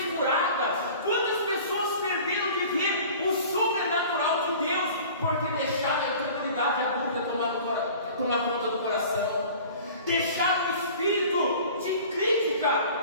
curadas? Quantas pessoas perderam de ver o sobrenatural de Deus porque deixaram a incredulidade e a dúvida tomar conta do coração? Deixaram o espírito de crítica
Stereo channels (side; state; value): both; inverted; correlation -0.43